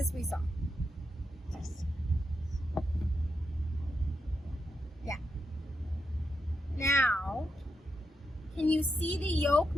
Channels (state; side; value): normal; both; correlation 0.84